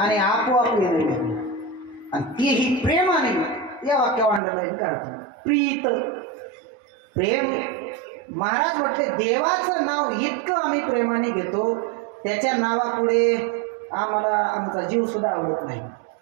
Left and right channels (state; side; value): drops out; left; at 4.4 s